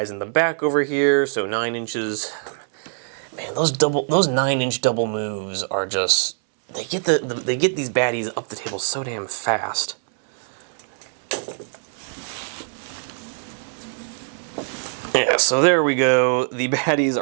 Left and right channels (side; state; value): left; silent; digital silence